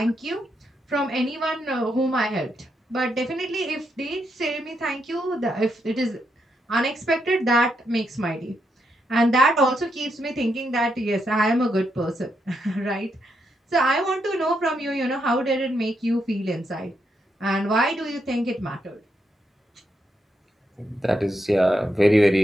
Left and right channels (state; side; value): normal; both; correlation 0.81